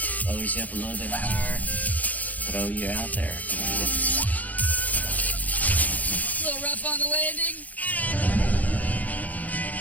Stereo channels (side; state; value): right; late; 0.078 ms